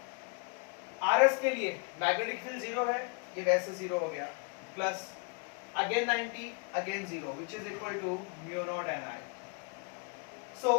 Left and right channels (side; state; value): right; quieter; 34.9 dB